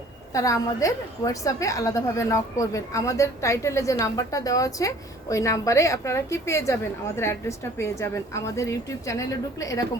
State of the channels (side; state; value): both; normal; correlation 0.52